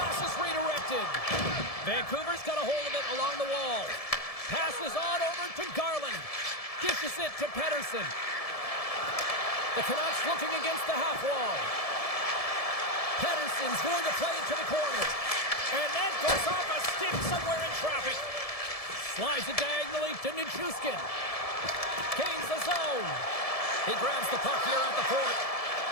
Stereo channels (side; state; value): right; late; 1.7 ms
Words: is redirected. Vancouver's got a hold of it along the wall. Passes on over to Garland. Dishes it to Pettersson. The Canucks looking against the half wall. Pettersson's going to play it to the corner. And that goes off a stick somewhere in traffic. Slides it diagonally to Nichushkin. Gains the zone. He grabs the puck here at the point.